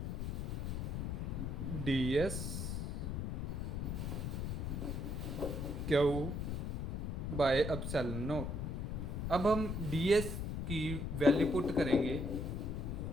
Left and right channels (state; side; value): noise; left; rumble, 2 dB below the sound